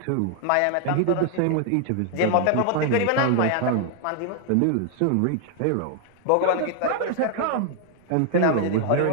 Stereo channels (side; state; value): both; different; correlation 0.00